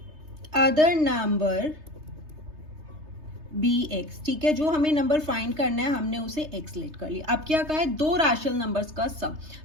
other number be x. ठीक है, जो हमें नंबर फाइंड करना है हमने उसे एक्स लेट कर लिया। अब क्या कहा है? दो रैशनल नंबर्स का सम।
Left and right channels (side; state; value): left; late; 3.3 ms